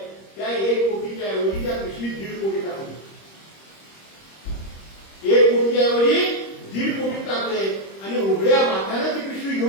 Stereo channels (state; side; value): late; right; 26 ms